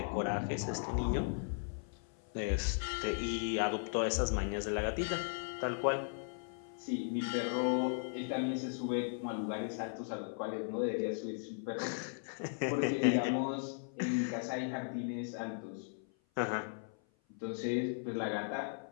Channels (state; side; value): silent; right; 53 dB below the other